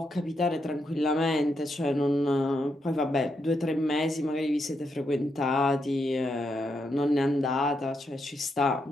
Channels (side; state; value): both; normal; correlation 0.81